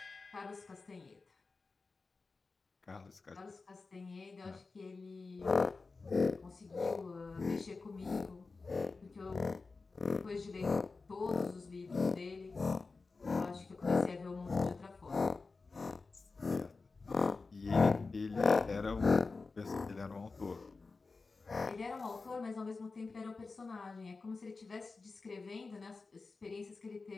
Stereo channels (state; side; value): quieter; right; 4.0 dB